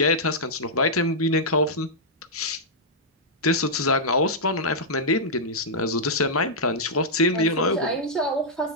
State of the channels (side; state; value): both; normal; correlation -0.09